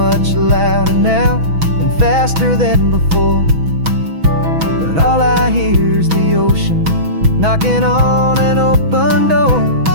louder now and faster than before, but all I hear is the ocean knocking on an open door.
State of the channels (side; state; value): left; late; 6.1 ms